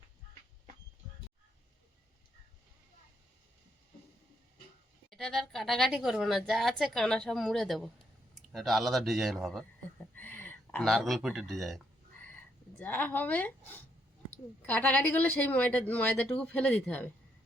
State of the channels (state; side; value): normal; both; correlation 0.75